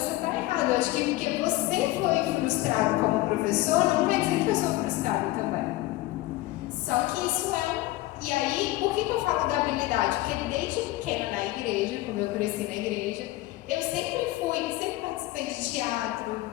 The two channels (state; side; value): quieter; right; 17.5 dB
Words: está errado, eu acho que porque você foi frustrado como professor, não quer dizer que eu sou frustrado também. Só que isso E aí, por que eu falo da habilidade? Porque desde pequena na igreja, como eu cresci na igreja, eu sempre participei de teatro,